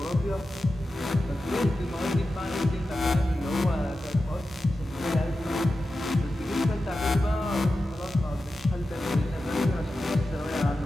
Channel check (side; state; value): both; normal; correlation 0.92